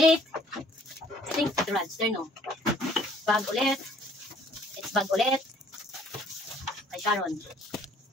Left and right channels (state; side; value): normal; both; correlation 0.59